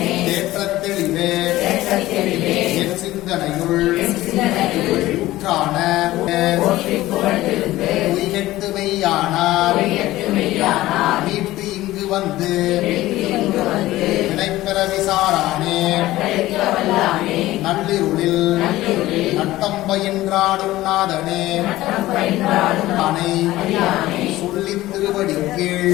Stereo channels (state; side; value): quieter; right; 16.6 dB